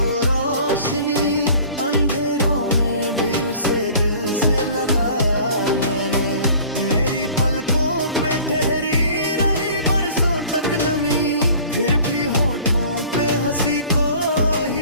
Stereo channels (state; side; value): inverted; both; correlation -0.47